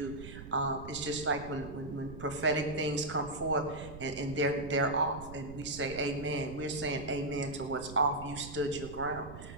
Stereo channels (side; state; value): right; noise; rumble, 12 dB below the sound